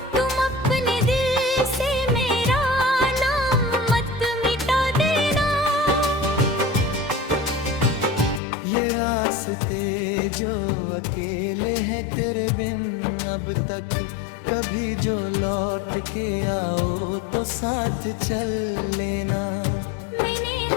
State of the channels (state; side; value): drops out; right; at 8.4 s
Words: तुम अपने दिल से मेरा नाम मत मिटा देना। रास्ते जो अकेले हैं तेरे बिन अब तक कभी जो लौट के आओ तो साथ चल लेना। मैंने